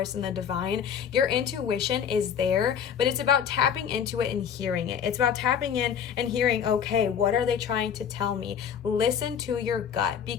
and the divine. Your intuition is there, but it's about tapping into it and hearing it. It's about tapping in and hearing, okay, what are they trying to tell me? Listen to your gut,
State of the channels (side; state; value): right; quieter; 7.9 dB